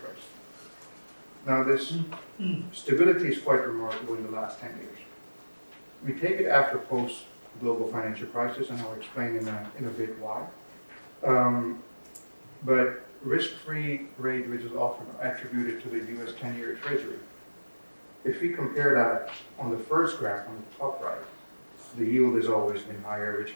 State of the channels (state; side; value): inverted; both; correlation -1.00